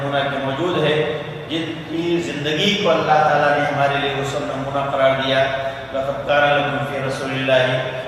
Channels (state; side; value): identical; both; correlation 1.00